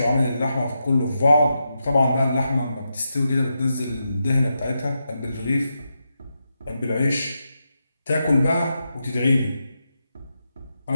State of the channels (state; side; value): inverted; both; correlation -0.86